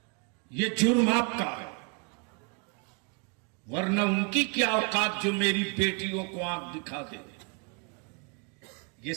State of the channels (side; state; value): left; quieter; 34.4 dB